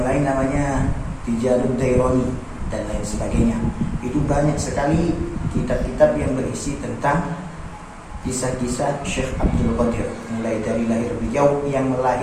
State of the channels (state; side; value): identical; both; correlation 1.00